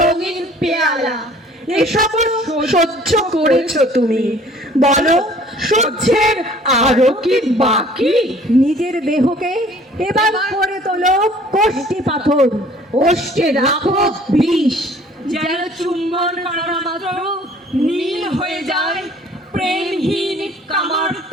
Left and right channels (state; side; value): normal; both; correlation 0.53